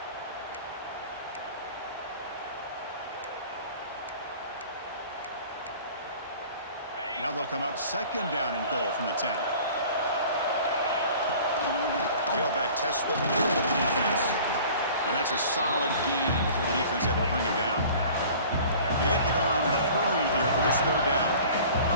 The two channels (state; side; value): inverted; both; correlation -0.46